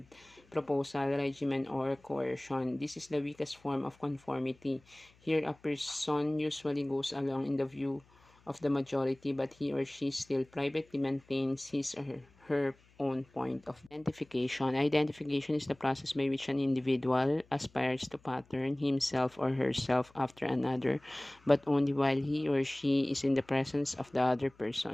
proposal, regimen, or coercion. This is the weakest form of conformity. Here, a person usually goes along in the view of the majority, but he or she still privately maintains his or her own point of identification. Identification is the process by which an individual aspires to pattern himself or herself after another, but only while he or she is in the presence of the other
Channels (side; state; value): left; noise; hum, 30 dB below the sound